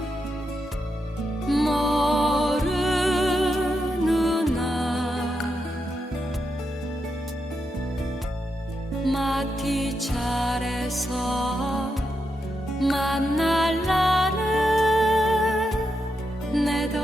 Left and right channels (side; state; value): both; normal; correlation 0.85